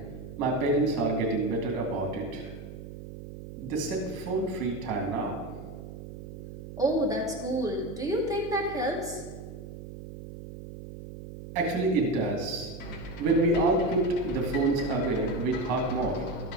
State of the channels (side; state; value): right; noise; hum, 12 dB below the sound